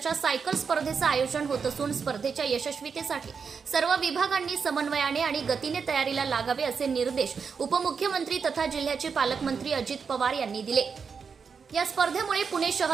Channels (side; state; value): left; quieter; 5.8 dB